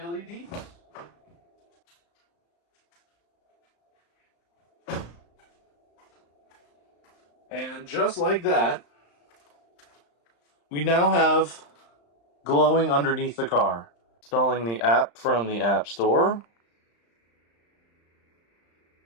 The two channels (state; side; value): late; right; 35 ms